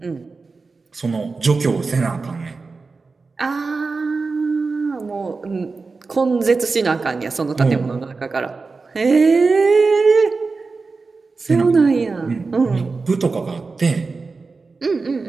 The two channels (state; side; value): quieter; left; 4.2 dB